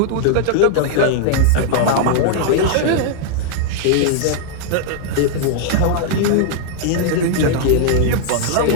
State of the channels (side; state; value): both; different; correlation -0.01